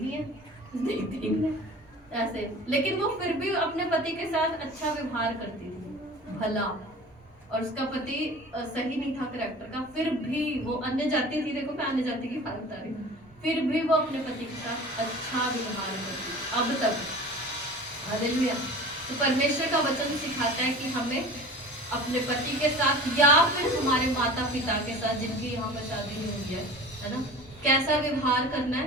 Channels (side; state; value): both; normal; correlation 0.39